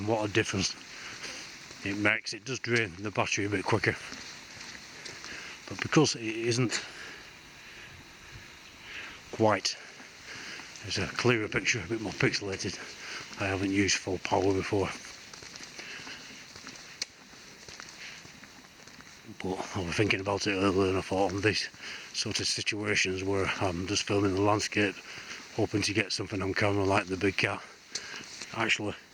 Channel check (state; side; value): identical; both; correlation 1.00